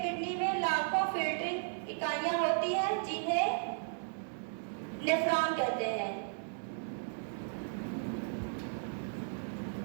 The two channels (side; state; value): left; silent; digital silence